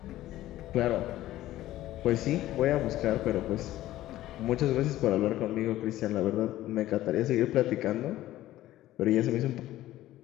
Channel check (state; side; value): quieter; right; 14.8 dB